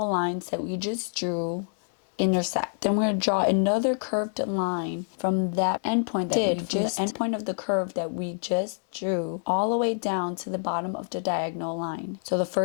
lines that we just drew intersect. Then we're going to draw another curved line from that endpoint endpoint of the curve that we just drew all the way down to the bottom of the diagonal line. So the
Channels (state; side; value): silent; right; 60 dB below the other